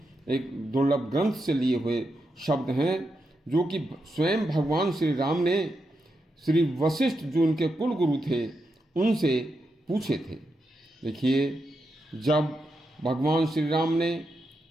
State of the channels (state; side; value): normal; both; correlation 0.85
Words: एक दुर्लभ ग्रंथ से लिए हुए शब्द हैं, जो कि स्वयं भगवान श्री राम ने श्री वशिष्ठ, जो उनके कुल गुरु थे, उनसे पूछे थे। देखिए, जब भगवान श्री राम ने